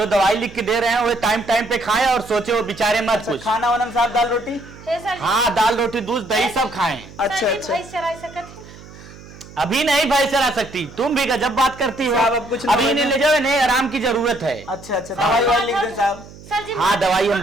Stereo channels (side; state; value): right; noise; hum, 19 dB below the sound